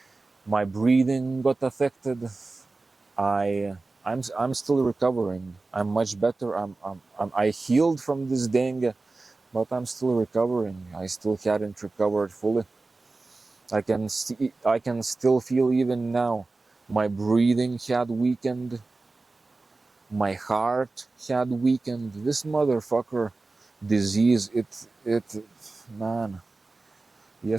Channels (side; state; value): left; quieter; 3.5 dB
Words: my breathing got affected. I'm still recovering. I'm much better. I healed from this dengue, but I'm still recovering. I still hadn't recovered fully. I can still feel even now. My breathing had weakened. My heart had weakened. This motherfucker disease, man.